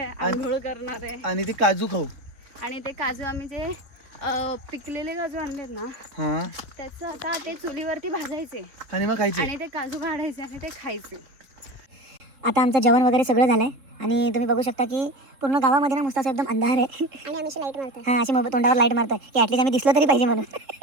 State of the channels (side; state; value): left; late; 3.7 ms